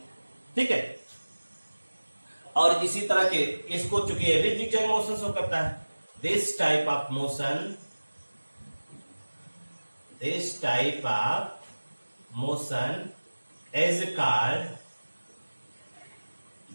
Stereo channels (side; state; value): both; inverted; correlation -1.00